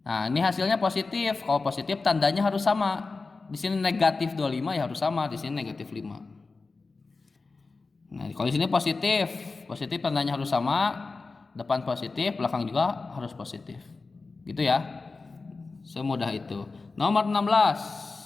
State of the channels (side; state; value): right; quieter; 3.9 dB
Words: nah ini hasilnya positif. Kalau positif tandanya harus sama. Di sini negatif 25 ya harus sama, di sini negatif 5. Nah, kalau di sini positif, positif tandanya harus sama. Depan positif, belakang juga harus positif. Gitu ya. Semudah itu. Nomor 16.